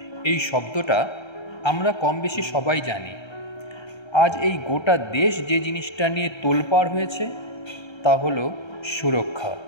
এই শব্দটা আমরা কম বেশি সবাই জানি। আজ এই গোটা দেশ যে জিনিসটা নিয়ে তোলপাড় হয়েছে তা হলো সুরক্ষা।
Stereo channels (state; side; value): late; right; 1.3 ms